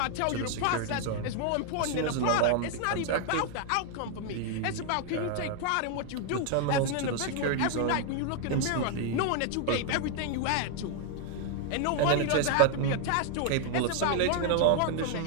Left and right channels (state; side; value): different; both; correlation 0.00